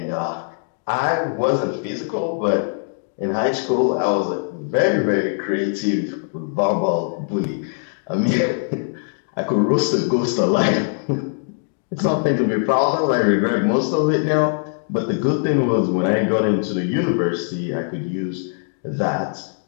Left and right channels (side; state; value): right; silent; digital silence